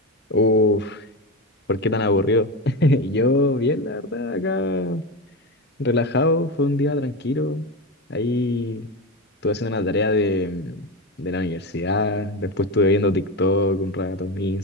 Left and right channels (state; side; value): normal; both; correlation 0.18